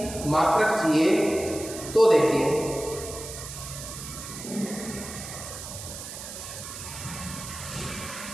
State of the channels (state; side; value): noise; right; hiss, 10 dB below the sound